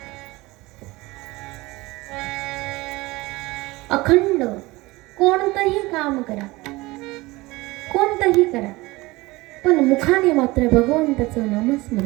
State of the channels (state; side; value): quieter; left; 21.3 dB